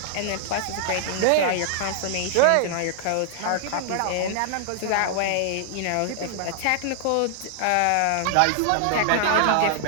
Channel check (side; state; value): both; different; correlation -0.01